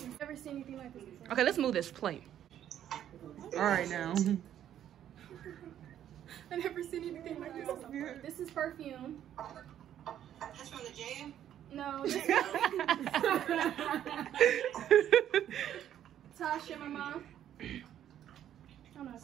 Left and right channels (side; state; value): left; quieter; 10.7 dB